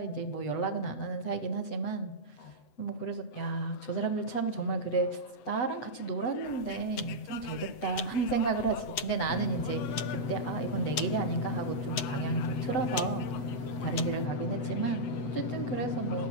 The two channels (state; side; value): late; right; 8.0 ms